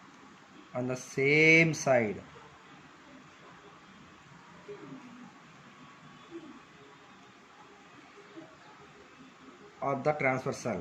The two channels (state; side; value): identical; both; correlation 1.00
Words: on the same side of the transversal,